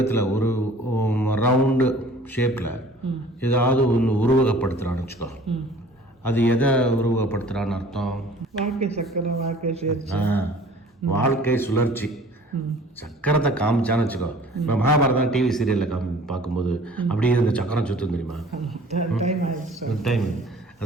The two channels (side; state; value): both; normal; correlation 0.49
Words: ஒரு ரவுண்டு ஷேப்பில் ஏதாவது ஒன்று உருவகப்படுத்துகிறான்னு வச்சுக்கோ, அது எதை உருவகப்படுத்துகிறான்னு அர்த்தம்? வாழ்க்கை சக்கரம், வாழ்க்கை சுழற்சி. வாழ்க்கை சுழற்சி. சக்கரத்தை காமிச்சான்னு வச்சுக்கோ, இப்போ மகாபாரதம் டிவி சீரியலில் பார்க்கும்போது அப்படியே இந்த சக்கரம் சுற்றும் தெரியுமா? டைம்.